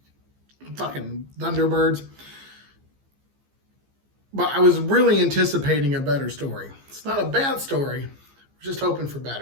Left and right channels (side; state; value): left; late; 15 ms